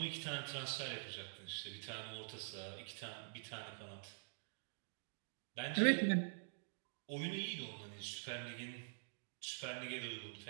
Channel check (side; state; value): left; silent; digital silence